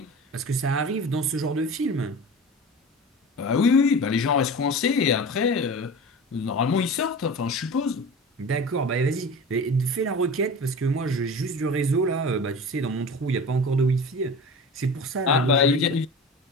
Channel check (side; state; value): both; normal; correlation 0.34